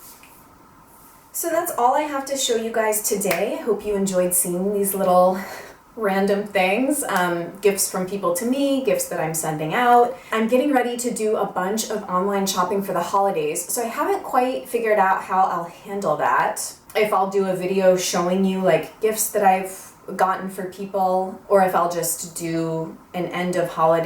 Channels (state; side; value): identical; both; correlation 1.00